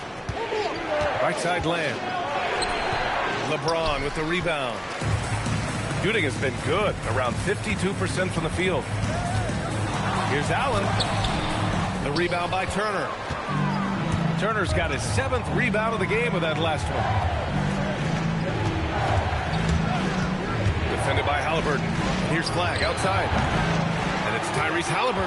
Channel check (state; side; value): identical; both; correlation 1.00